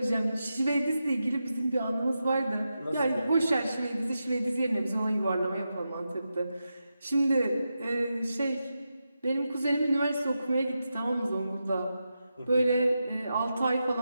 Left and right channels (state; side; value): inverted; both; correlation -0.89